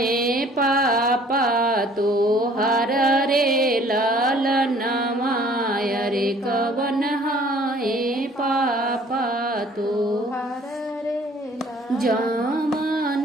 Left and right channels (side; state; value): both; normal; correlation 0.55